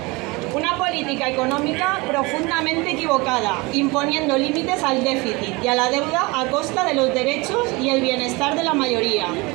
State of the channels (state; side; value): quieter; left; 24.9 dB